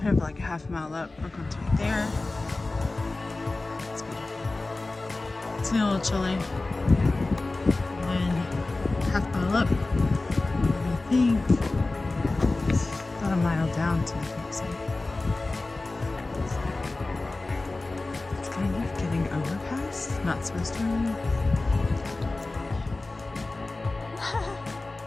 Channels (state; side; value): quieter; right; 3.2 dB